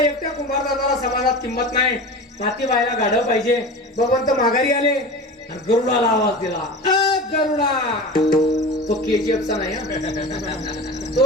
कुंभार दादाला समाजात किंमत नाही, माती व्हायला गाढव पाहिजे. भगवंत माघारी आले आणि गरुडाला आवाज दिला, गरुडा. तो केजीएफचा नाही,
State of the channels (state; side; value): normal; both; correlation 0.32